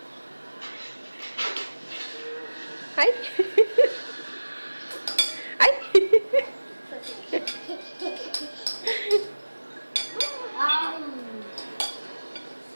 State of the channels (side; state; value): both; inverted; correlation -1.00